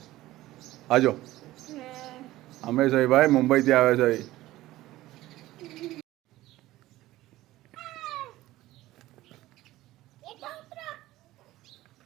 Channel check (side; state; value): left; quieter; 16.5 dB